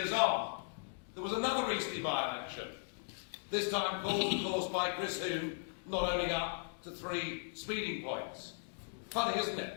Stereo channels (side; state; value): right; silent; digital silence